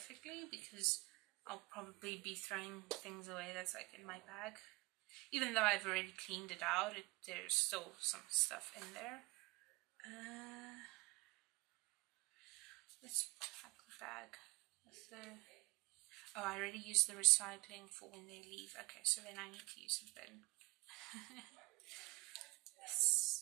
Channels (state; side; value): quieter; left; 23.3 dB